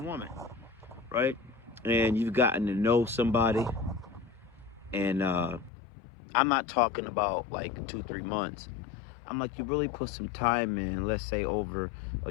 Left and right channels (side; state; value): right; drops out; at 5.7 s